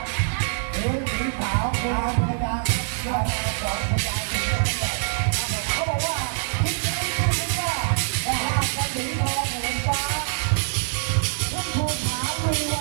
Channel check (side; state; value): left; silent; digital silence